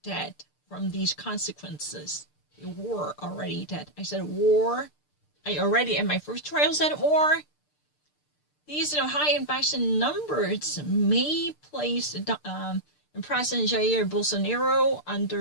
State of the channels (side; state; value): right; late; 6.7 ms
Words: dead from these consequences. They were already dead. I said war. I already, in my first trial, said war. These high infection numbers may place President Jair Bolsonaro